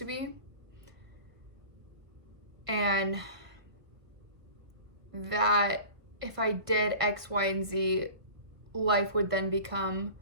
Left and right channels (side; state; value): left; late; 1.5 ms